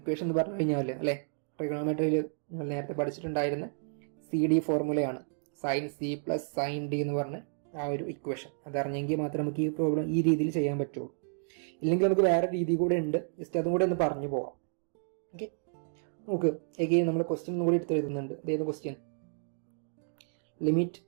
എന്ന് പറഞ്ഞു കഴിഞ്ഞാൽ അല്ലേ, ട്രിഗണോമെട്രിയിൽ നിങ്ങൾ നേരത്തെ പഠിച്ചിട്ടുണ്ടായിരുന്ന CD ഫോർമുലയാണ്. Sine C plus sine D എന്ന് പറഞ്ഞ ആ ഒരു ഇക്വേഷൻ. അതറിഞ്ഞെങ്കിൽ മാത്രമേ നമുക്ക് ഈ പ്രോബ്ലം ഈ രീതിയിൽ ചെയ്യാൻ പറ്റുള്ളൂ. ഇല്ലെങ്കിൽ നമുക്ക് വേറെ രീതി കൂടെ ഉണ്ട്. ജസ്റ്റ് അതും കൂടെ ഒന്ന് പറഞ്ഞു പോവാം. ഓക്കെ. നമുക്ക് എഗെയിൻ നമ്മൾ ക്വസ്റ്റ്യൻ കൂടി എടുത്ത് എഴുതുന്നുണ്ട്. ഇതേത് question? Limit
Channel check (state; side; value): silent; left; digital silence